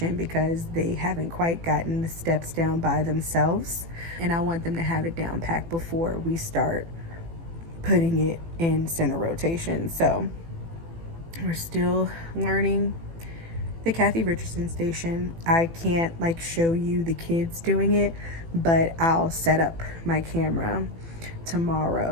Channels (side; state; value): left; late; 18 ms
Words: because they haven't quite gotten the steps down by themselves, and I want them to have it down packed before we start putting it in center rotation. So we're still learning the Kathy Richardson station. I can't like show you the kids doing it, but I'll set up my camera